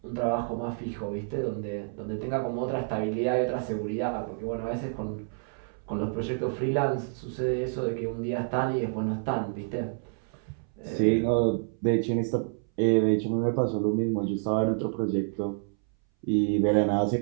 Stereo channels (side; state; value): left; silent; 59 dB below the other